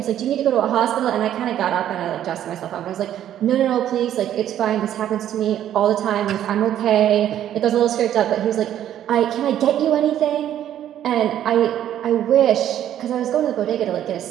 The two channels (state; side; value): quieter; left; 11.1 dB